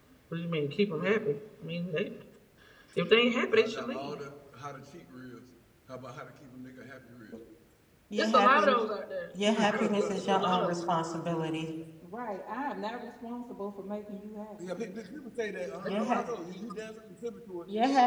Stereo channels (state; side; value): identical; both; correlation 1.00